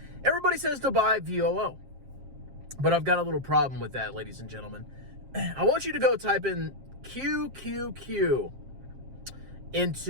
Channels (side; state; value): left; late; 7.5 ms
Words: Everybody says to buy VOO. But I've got a little problem with that, ladies and gentlemen. I want you to go type in QQQ